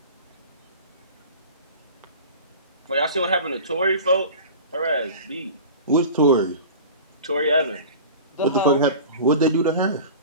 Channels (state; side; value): inverted; both; correlation -0.38